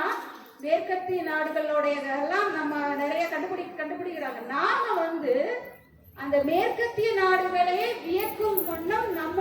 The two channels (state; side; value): identical; both; correlation 1.00